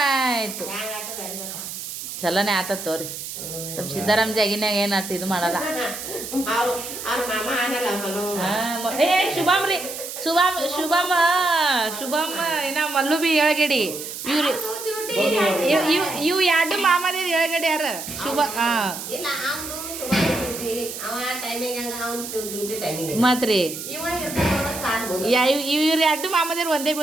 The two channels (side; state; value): right; noise; hiss, 8 dB below the sound